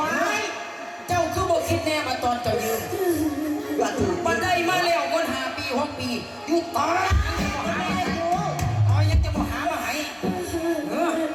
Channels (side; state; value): both; identical; correlation 1.00